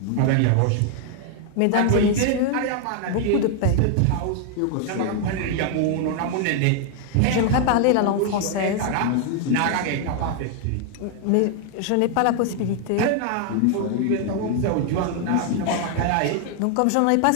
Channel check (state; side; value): different; both; correlation 0.00